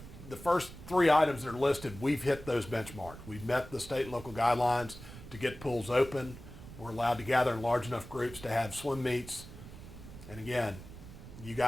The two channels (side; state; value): right; noise; rumble, 15 dB below the sound